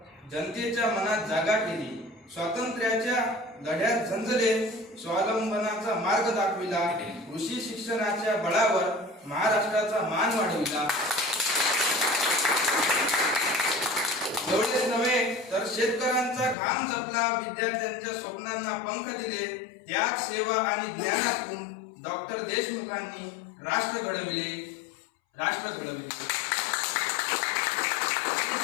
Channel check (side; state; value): right; drops out; at 16.6 s